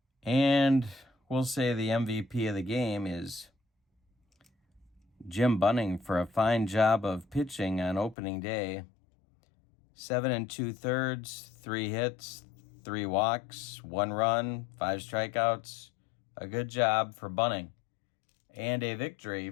And we'll say the MVP of the game is Jim Bunning for a fine job of pitching on opening day. 7 2/3, 3 hits, 3 walks, 1 run, 5 strikeouts. A good job for Bunning. And a victory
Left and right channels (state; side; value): drops out; right; at 8.2 s